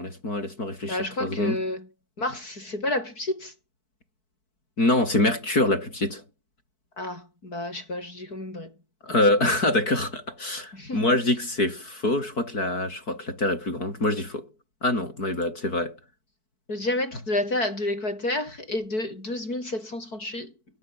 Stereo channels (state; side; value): late; right; 4.6 ms